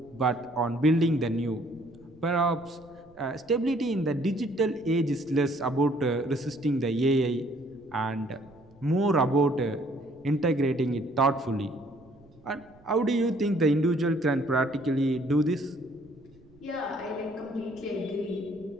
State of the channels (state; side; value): noise; right; rumble, 27 dB below the sound